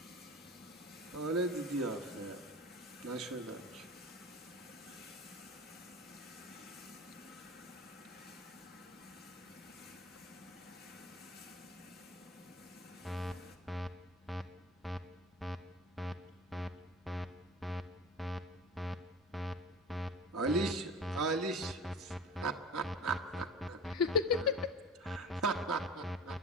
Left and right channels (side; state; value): both; normal; correlation 0.35